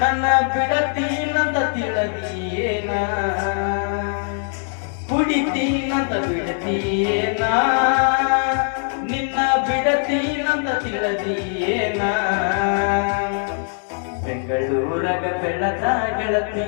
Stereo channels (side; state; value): right; silent; 58 dB below the other